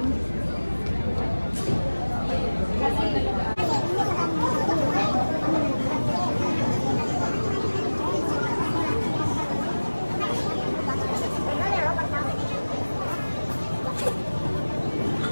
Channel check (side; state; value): both; inverted; correlation -1.00